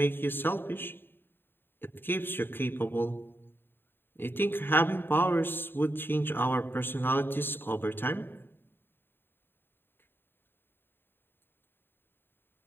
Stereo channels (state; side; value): late; right; 0.10 ms